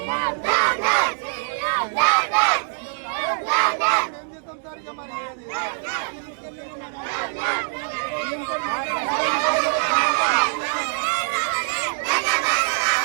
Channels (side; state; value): left; silent; digital silence